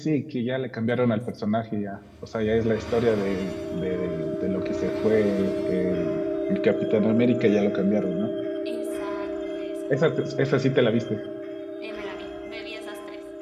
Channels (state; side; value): identical; both; correlation 1.00